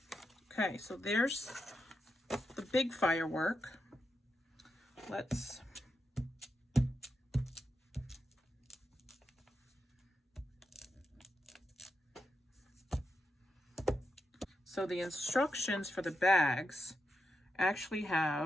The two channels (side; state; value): both; normal; correlation 0.86